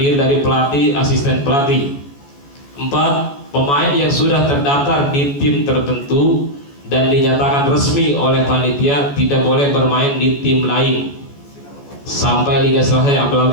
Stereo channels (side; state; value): right; late; 14 ms